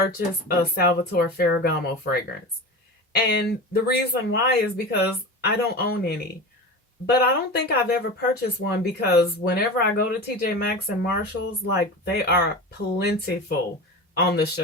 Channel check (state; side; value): normal; both; correlation 0.28